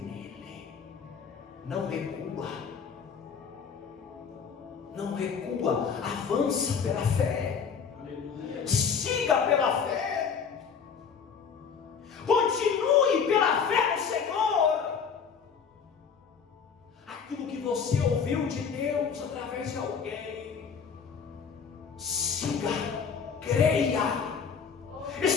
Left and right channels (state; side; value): quieter; right; 6.4 dB